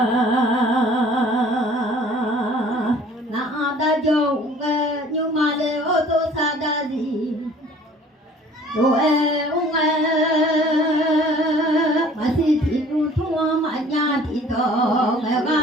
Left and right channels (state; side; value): normal; both; correlation 0.51